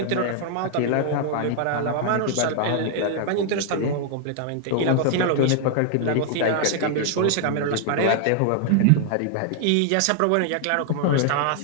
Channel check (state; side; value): different; both; correlation 0.00